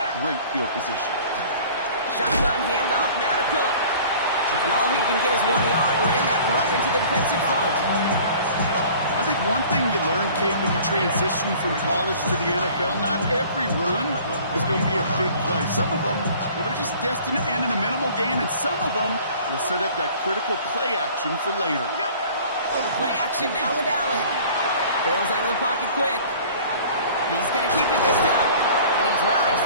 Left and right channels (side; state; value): both; inverted; correlation -0.48